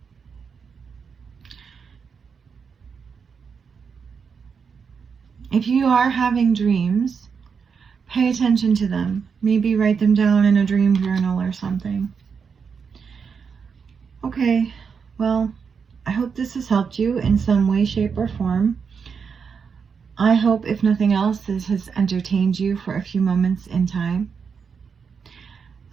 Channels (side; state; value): left; quieter; 6.1 dB